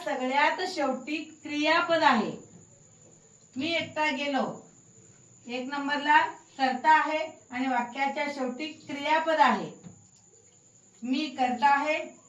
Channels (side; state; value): both; identical; correlation 1.00